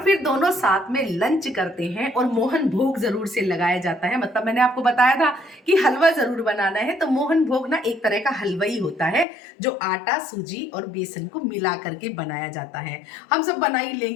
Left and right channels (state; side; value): drops out; right; at 9.2 s